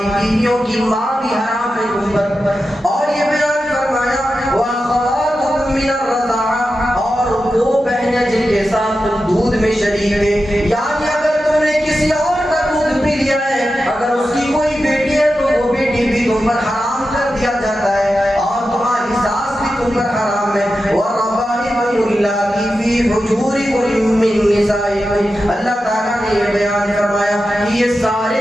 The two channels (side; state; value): both; normal; correlation 0.91